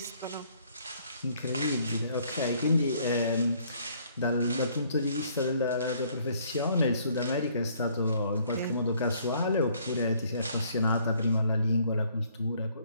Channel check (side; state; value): both; inverted; correlation -0.63